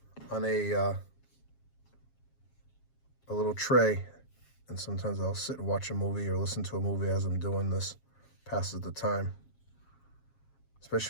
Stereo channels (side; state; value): right; late; 7.4 ms